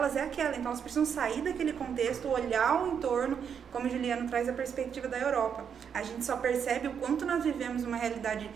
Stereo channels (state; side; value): quieter; left; 7.5 dB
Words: é aquela, então elas precisam sair daquele contexto, olhar o entorno, como o Juliano traz a perspectiva da Europa. A gente só percebe o quanto nós vivemos uma realidade